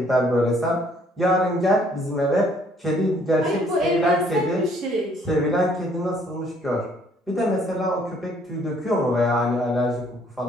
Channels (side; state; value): both; normal; correlation 0.63